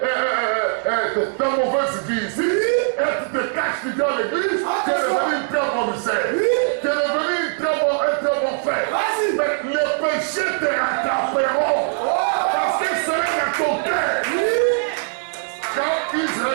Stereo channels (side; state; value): left; silent; digital silence